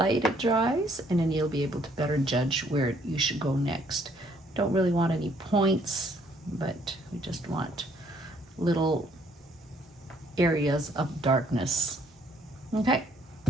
it dries, and then you'll be able to better judge where you should go next. Don't really want any points, but we just want little areas of darkness. Okay.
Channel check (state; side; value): normal; both; correlation 0.65